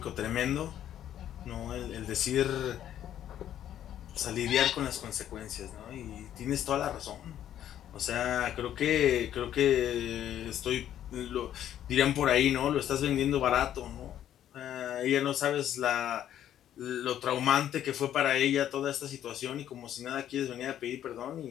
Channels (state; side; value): quieter; right; 11.0 dB